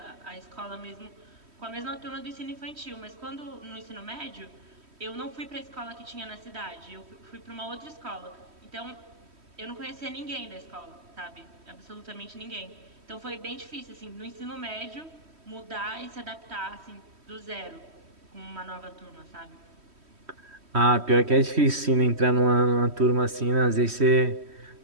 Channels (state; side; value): late; left; 3.1 ms